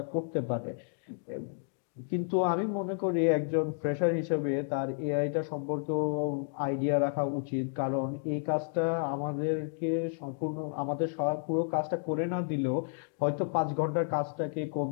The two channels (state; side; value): silent; right; digital silence